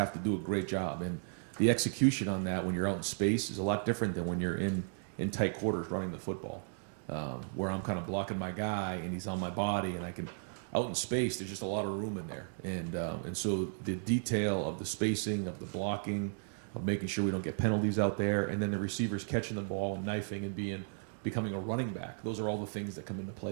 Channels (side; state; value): left; silent; digital silence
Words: to do a great job. And the execution on that when you're out in space is a lot different than when you're in tight quarters running the football, where I'm kind of blocking my guy and he's on my body and I can – out in space, there's just a lot of room in there. And so the detail of the spacing, of the blocking, of making sure we don't get penalties out there, and then the receivers catching the ball, knifing, and becoming a running back. Those are all the things that come into